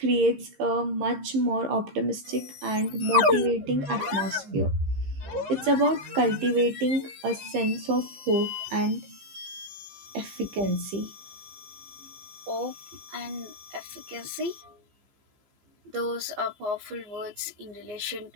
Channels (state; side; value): late; left; 15 ms